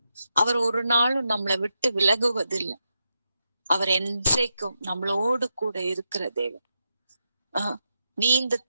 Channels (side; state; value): both; inverted; correlation -0.86